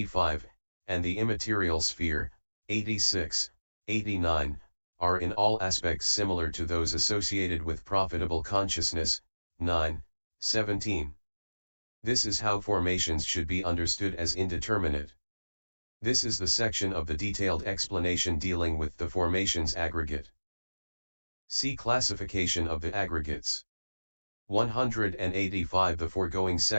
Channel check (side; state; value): both; inverted; correlation -1.00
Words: and the immaterial sphere, 86, 89, are in all aspects similar to those associated with profitable consciousness, 9, 17. This is how formations should be understood as indeterminate. This is the section of the detailed explanation dealing with the formations aggregate. See classification of the aggregates. 185. The foregoing